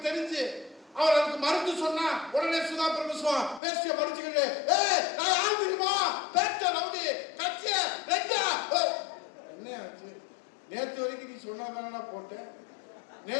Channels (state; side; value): drops out; right; at 3.6 s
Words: தெரிஞ்சு அவர் அதுக்கு மறுத்து சொன்னா உடனே சுதா பரமசிவம் பேசிய படிச்சுக்கிட்டு நான் யாரு தெரியுமா பேட்ட ரவுடி கட்சிய ரெண்டா என்ன ஆச்சு? நேற்று வரைக்கும் நீ சொன்னதானே போட்டேன்,